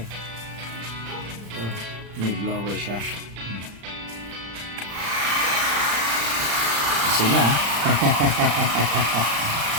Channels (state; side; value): late; left; 35 ms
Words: May blower siya. Kasi nga